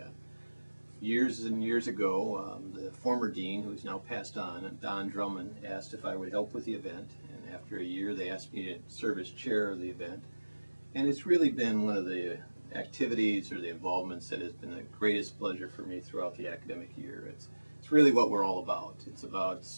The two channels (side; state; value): both; inverted; correlation -1.00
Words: Years and years ago, the former dean, who's now passed on, Don Drummond, asked if I would help with the event. And after a year, they asked me to serve as chair of the event. And it's really been one of the activities or the involvements that has been the greatest pleasure for me throughout the academic year. It's really what we're all about. It's about